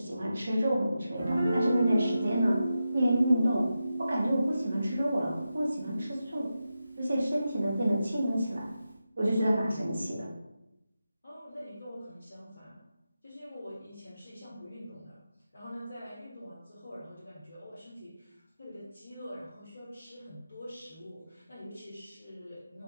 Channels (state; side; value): inverted; both; correlation -0.90